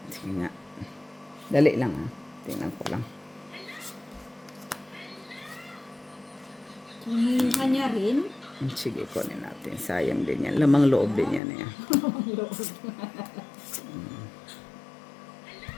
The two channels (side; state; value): right; drops out; at 11.4 s